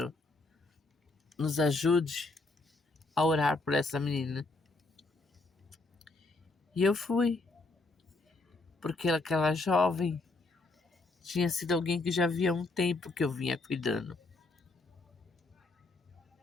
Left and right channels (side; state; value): right; quieter; 3.3 dB